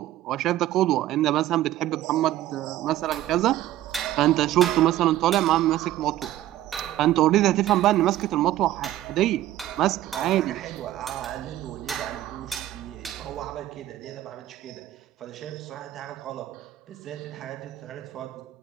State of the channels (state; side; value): quieter; left; 14.0 dB